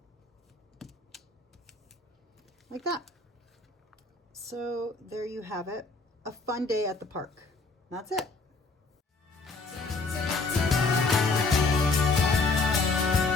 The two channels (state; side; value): quieter; right; 3.8 dB